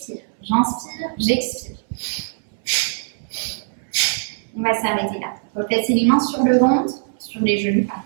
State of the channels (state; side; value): silent; left; 61 dB below the other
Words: J'inspire, j'expire. On va s'arrêter là. Replacez les mains sur le ventre, sur les genoux.